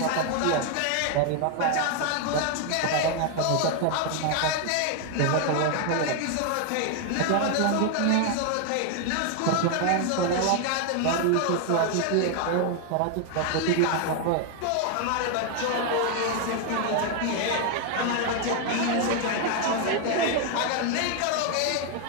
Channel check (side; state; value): both; different; correlation 0.00